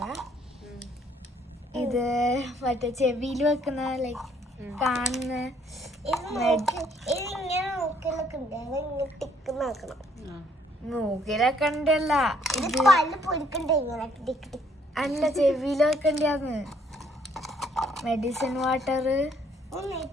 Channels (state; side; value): normal; both; correlation 0.65